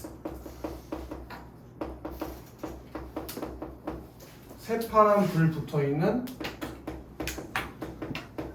새파란 불 붙어 있는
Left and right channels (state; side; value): identical; both; correlation 1.00